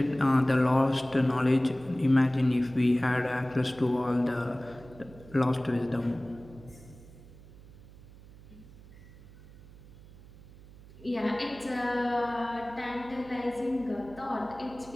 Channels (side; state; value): right; noise; hum, 20 dB below the sound